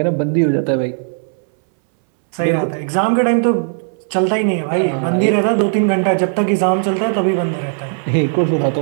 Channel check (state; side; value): silent; left; 64 dB below the other